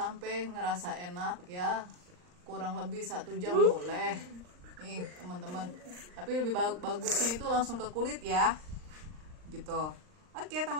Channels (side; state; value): left; late; 39 ms